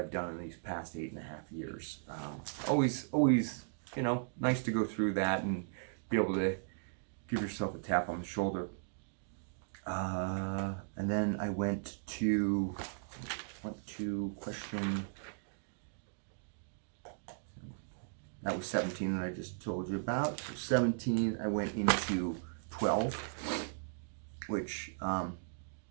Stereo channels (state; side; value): silent; left; digital silence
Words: done in these past 8.5 years. Always, you know, nice to go through that and be able to give yourself a tap on the shoulder. And then I went to question, that was 17 that I just told you about. So 17, I went into 12, which,